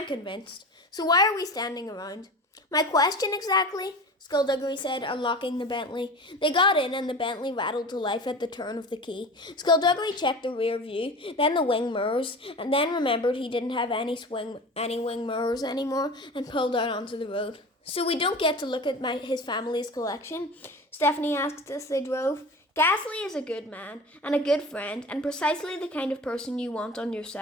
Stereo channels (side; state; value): both; normal; correlation 0.34